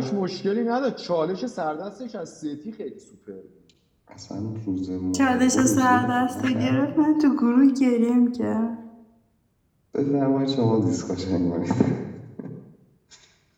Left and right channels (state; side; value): identical; both; correlation 1.00